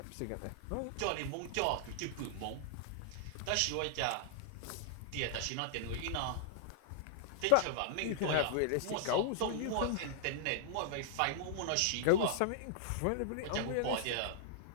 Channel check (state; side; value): different; both; correlation -0.01